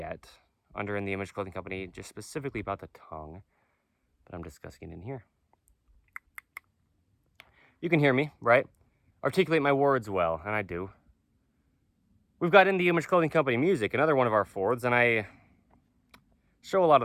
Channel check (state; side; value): identical; both; correlation 1.00